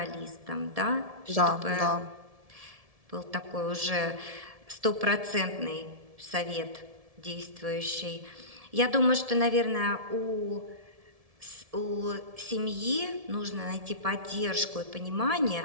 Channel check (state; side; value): late; left; 1.7 ms